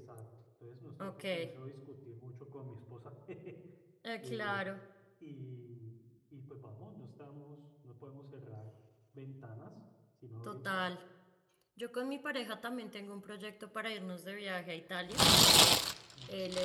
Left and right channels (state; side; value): identical; both; correlation 1.00